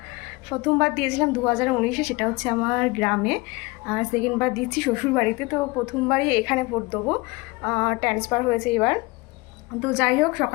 প্রথমবার দিয়েছিলাম 2019-এ, সেটা হচ্ছে আমার গ্রামে। আর সেকেন্ডবার দিচ্ছি শ্বশুরবাড়িতে। তো প্রথমবারই এখানে ভোট দেবো, ট্রান্সফার হয়েছে এবার। তো যাই হোক,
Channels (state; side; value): quieter; right; 24.0 dB